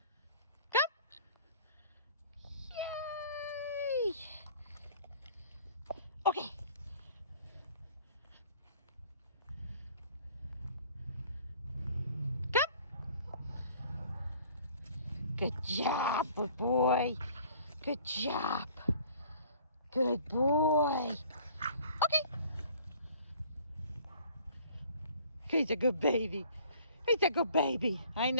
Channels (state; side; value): inverted; both; correlation -0.53